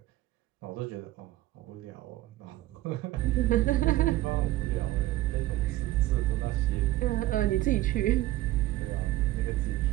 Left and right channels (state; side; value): quieter; left; 16.2 dB